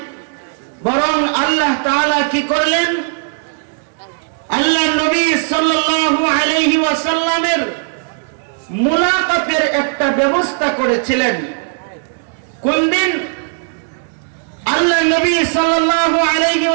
বরং আল্লাহ তাআলা কি করলেন? আল্লাহ নবী সাল্লাল্লাহু আলাইহি ওয়াসাল্লামের মুলাকাতের একটা ব্যবস্থা করেছিলেন। কোন দিন? আল্লাহ নবী সাল্লাল্লাহু আলাইহি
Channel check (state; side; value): silent; left; digital silence